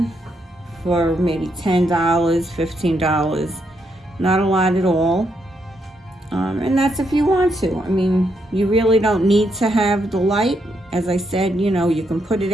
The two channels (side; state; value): both; normal; correlation 0.78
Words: for maybe $10, $15. Not a lot at all. And that's if you want to. I mean, you really don't need to have the light. As I said, you know, you can put it